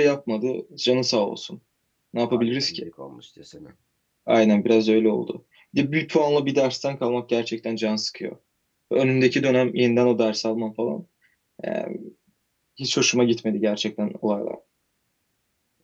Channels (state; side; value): identical; both; correlation 1.00